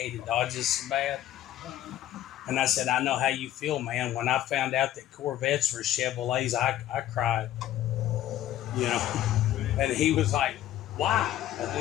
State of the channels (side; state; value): right; quieter; 12.6 dB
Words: Dodges so bad. And I said, I know how you feel, man. When I found out that Corvettes were Chevrolets, I cried. You know, and he was like, "Why?"